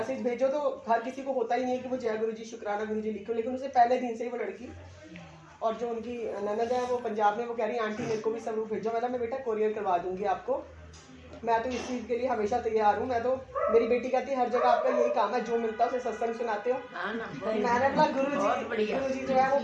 भेजो तो हर किसी को होता ही नहीं है कि वो जय गुरु जी, शुक्राना गुरु जी लिखो, लेकिन उसे पहले दिन से ही वो लड़की, और जो उनकी ननद है वो पंजाब में, वो कह रही आंटी मेरे को भी स्वरूप भेजो। मैं बेटा कोरियर करवा दूंगी आपको, मैं तो इस चीज़ के लिए हमेशा तैयार हूँ। मैं तो, मेरी बेटी कहती है हर जगह आपका यही काम है, जो मिलता है उसे सत्संग सुनाते हो। मैंने बोला गुरु जी जो है वो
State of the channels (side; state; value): both; identical; correlation 1.00